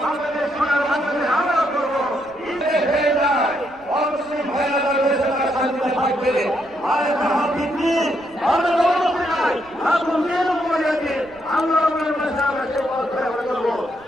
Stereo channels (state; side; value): noise; right; rumble, 28 dB below the sound